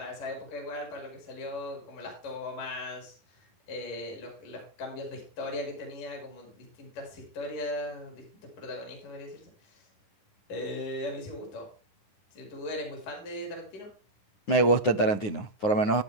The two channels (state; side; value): late; right; 9.7 ms